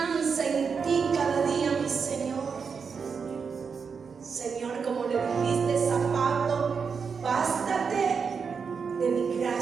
en ti cada día, mi Señor. Señor, como le dijiste a Pablo, bástate de mi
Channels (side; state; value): left; quieter; 5.8 dB